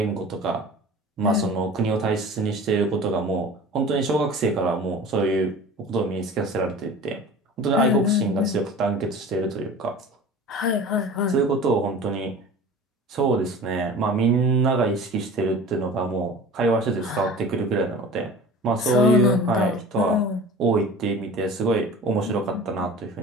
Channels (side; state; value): both; normal; correlation 0.39